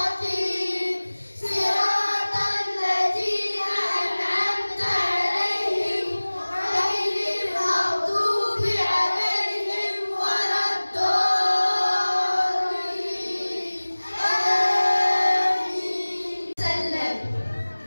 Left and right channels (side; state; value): both; inverted; correlation -1.00